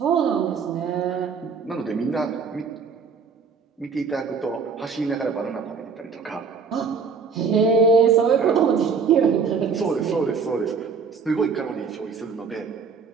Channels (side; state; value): left; quieter; 5.6 dB